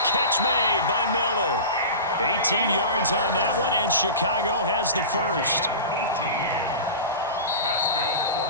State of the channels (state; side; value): inverted; both; correlation -0.31